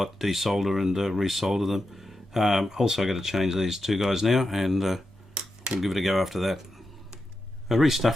desolder and resolder them. Also got to change these two guys now, and we'll give it a go after that. I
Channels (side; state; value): both; normal; correlation 0.88